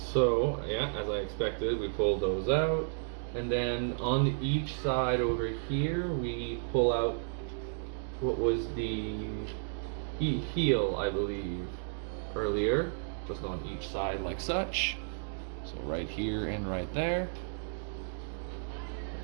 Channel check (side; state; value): left; silent; digital silence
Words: yeah, as I expected, we pulled those out. And then on each side over here, we pull out what was the heel, I believe, earlier. Just on each side like such. So right here and right there.